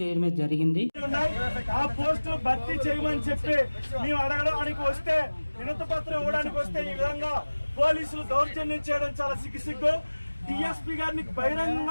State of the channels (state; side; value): inverted; both; correlation -1.00